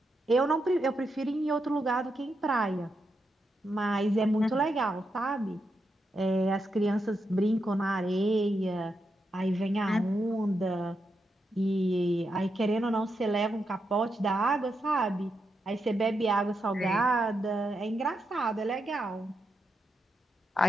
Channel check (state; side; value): normal; both; correlation 0.84